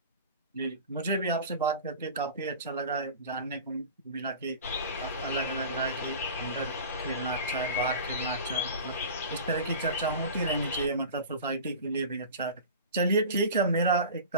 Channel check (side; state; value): both; inverted; correlation -0.36